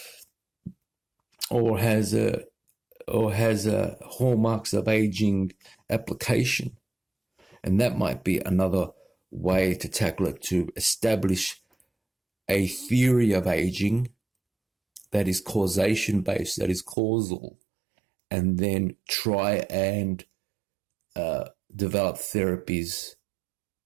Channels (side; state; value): left; drops out; at 16.9 s